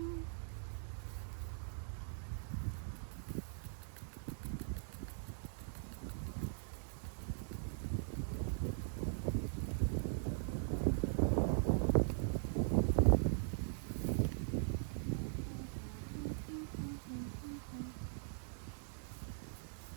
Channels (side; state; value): left; silent; digital silence